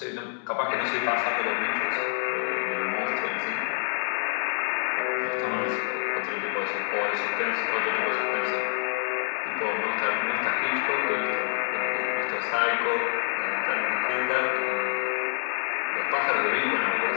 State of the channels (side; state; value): right; silent; 60 dB below the other